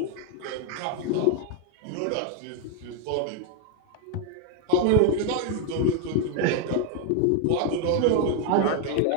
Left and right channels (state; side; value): different; both; correlation 0.01